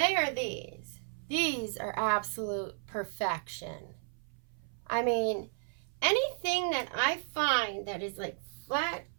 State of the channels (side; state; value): left; silent; 55 dB below the other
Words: are these. These are absolute perfection. I mean, anything that I find that is like flat,